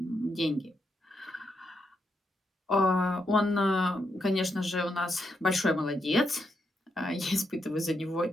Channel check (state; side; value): normal; both; correlation 0.81